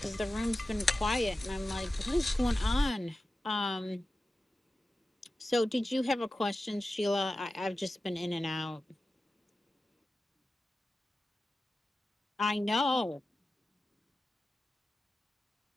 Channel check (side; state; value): both; normal; correlation 0.94